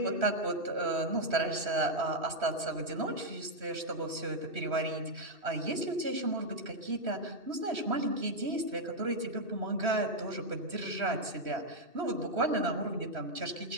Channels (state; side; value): late; left; 3.1 ms